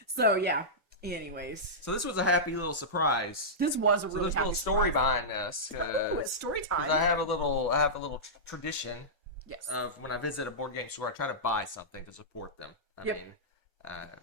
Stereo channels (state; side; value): normal; both; correlation -0.13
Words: So, yeah. Anyways. So this was a happy little surprise. This was a really there's happy a little story surprise. behind this. Oh, it's story time. I have a little tradition. Yes. Of when I visit a board game store, I try to buy something to support them. I mean,